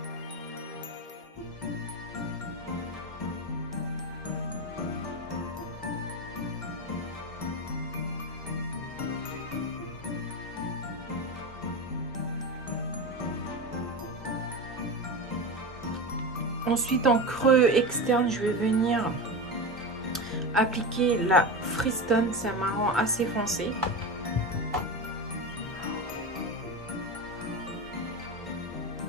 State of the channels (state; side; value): normal; both; correlation 0.22